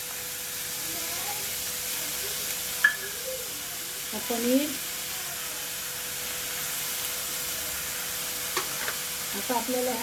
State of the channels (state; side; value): identical; both; correlation 1.00